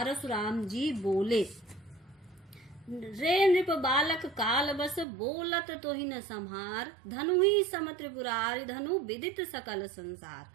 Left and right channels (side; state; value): left; drops out; at 5.1 s